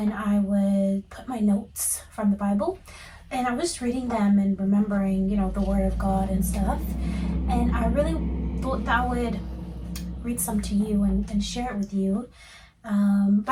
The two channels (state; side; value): identical; both; correlation 1.00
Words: I would put my notes from the Bible. And I was reading them and remembering, the Word of God and stuff. And I really thought that I would read some to you and share it with you.